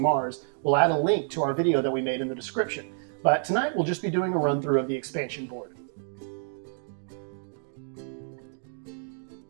we'll add a link to our video that we made in the description. But tonight we'll just be doing a run-through of the expansion board.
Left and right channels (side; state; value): left; silent; digital silence